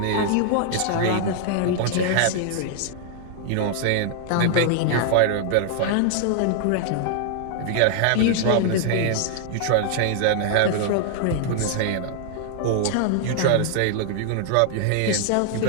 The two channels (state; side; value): different; both; correlation -0.01